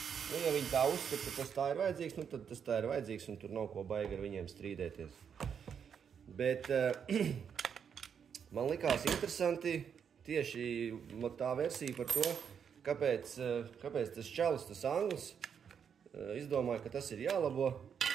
Nu, ja viņi tā uzskata, ka tas tā ir vajadzīgs, nu tad tas tā ir vajadzīgs, un tur nav ko baigi ar viņiem strīdēties. Bet man likās interesanti tieši tā versija par to, kāpēc tas čalis, tas anglis, izdomāja, ka tas ir jālabo,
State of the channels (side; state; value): left; quieter; 7.4 dB